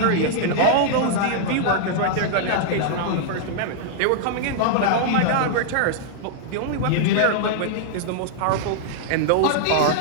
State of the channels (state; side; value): different; both; correlation -0.01